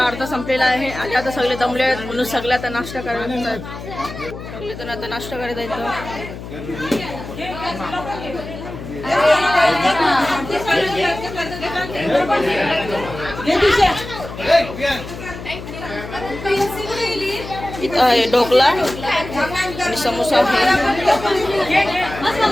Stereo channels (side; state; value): left; noise; hum, 11 dB below the sound